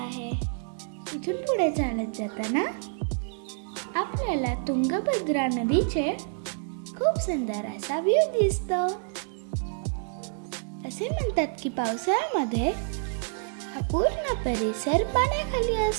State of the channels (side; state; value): left; silent; 59 dB below the other